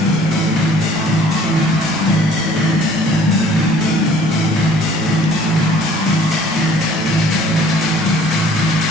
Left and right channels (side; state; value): both; normal; correlation 0.54